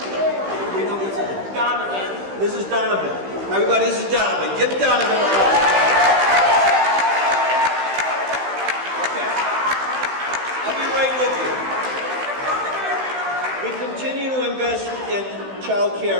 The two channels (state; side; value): late; left; 15 ms